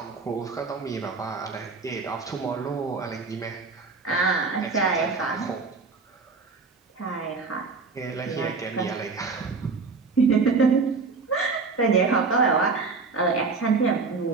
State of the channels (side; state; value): left; quieter; 4.4 dB